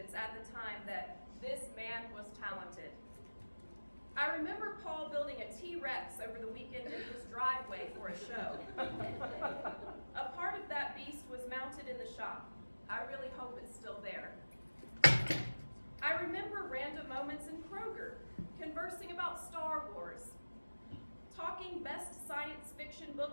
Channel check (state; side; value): inverted; both; correlation -1.00